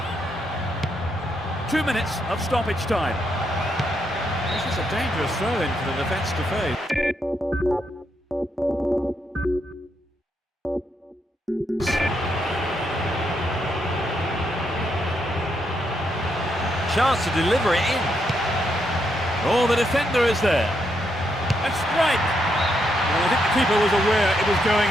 2 minutes of stoppage time. This is a dangerous throw-in for the defence to face. Chance to deliver it in. Oh, the defender is there. And strike. Well, I think the keeper was aware it was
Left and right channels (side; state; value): both; normal; correlation 0.79